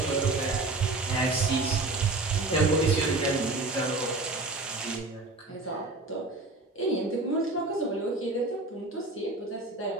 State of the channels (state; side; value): quieter; left; 3.1 dB